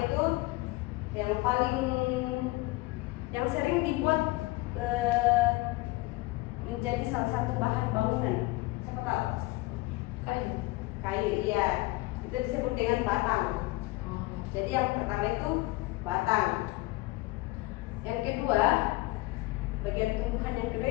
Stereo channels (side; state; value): right; quieter; 21.0 dB